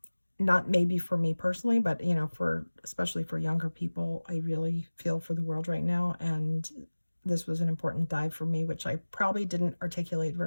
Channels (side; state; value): both; inverted; correlation -1.00